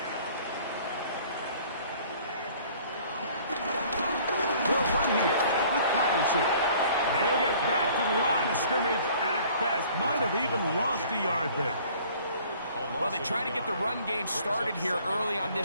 They'll run here with Patterson. They'll get back to the line of scrimmage at best. Might have even lost a yard there. Well, they try to get the run game started here early on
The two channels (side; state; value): both; inverted; correlation -0.53